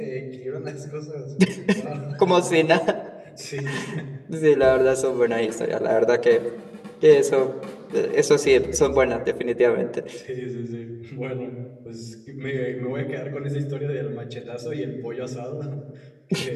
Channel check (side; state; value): both; identical; correlation 1.00